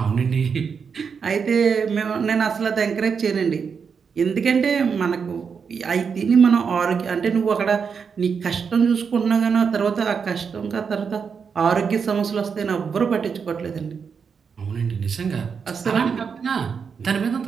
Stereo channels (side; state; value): left; quieter; 6.1 dB